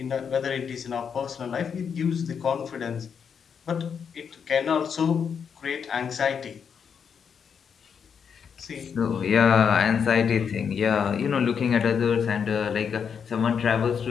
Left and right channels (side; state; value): right; quieter; 7.0 dB